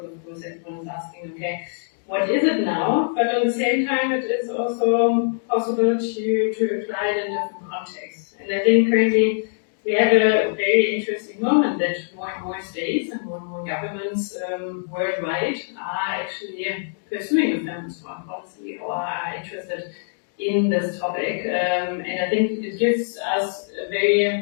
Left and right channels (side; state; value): right; silent; digital silence